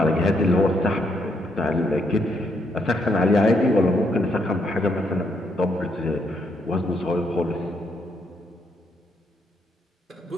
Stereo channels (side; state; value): both; normal; correlation 0.75